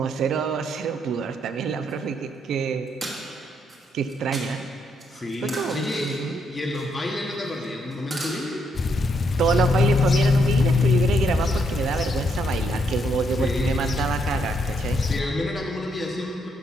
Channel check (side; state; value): both; normal; correlation 0.75